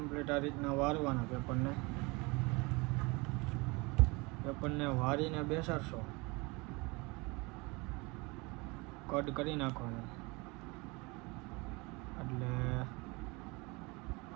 આ રીતના વારવાના પેપરને વારીને બેસાડશો. કટ કરી નાખવાનું એટલે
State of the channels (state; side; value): quieter; left; 26.3 dB